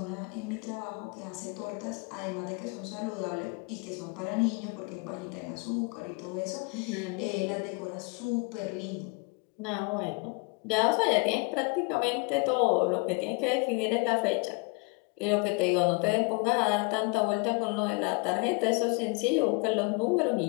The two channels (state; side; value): quieter; right; 29.3 dB